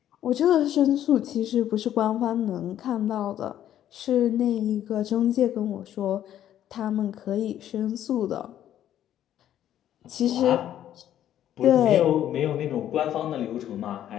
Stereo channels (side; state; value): right; quieter; 11.3 dB